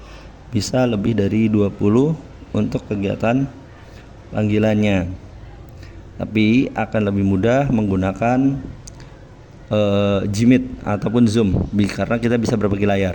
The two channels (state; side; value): identical; both; correlation 1.00